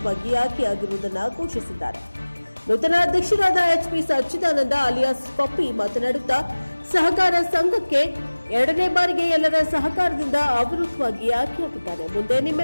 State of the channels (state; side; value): inverted; both; correlation -1.00